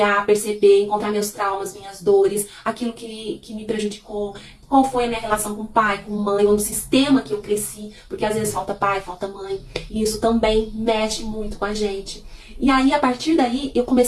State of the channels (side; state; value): both; identical; correlation 1.00